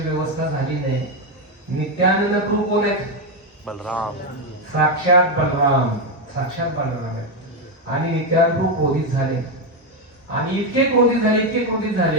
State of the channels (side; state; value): both; normal; correlation 0.06